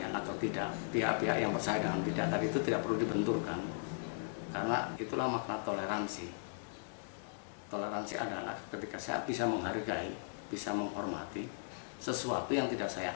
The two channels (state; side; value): silent; right; digital silence